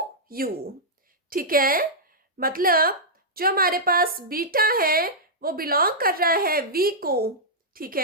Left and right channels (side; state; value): both; normal; correlation -0.10